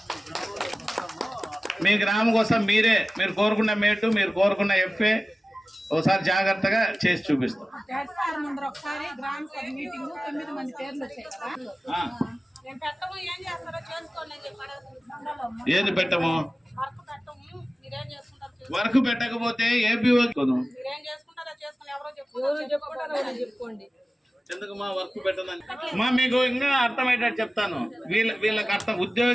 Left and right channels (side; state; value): both; normal; correlation 0.96